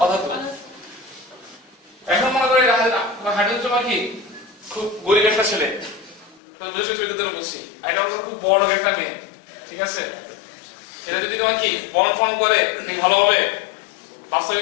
অধাতু এখন মনে করে হাইড্রোজেন তোমার কি খুব গরিব একটা ছেলে তো বুঝতে চরিত্রের জন্য বলছি এটা হচ্ছে খুব বড় একটা মেয়ে ঠিক আছে এটা যদি তোমার কি বন্ড ফর্ম করে ভালো হবে বাস্তবে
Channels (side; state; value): right; drops out; at 6.4 s